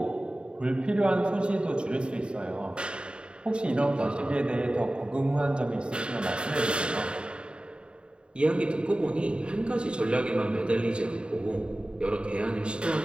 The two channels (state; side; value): late; left; 0.053 ms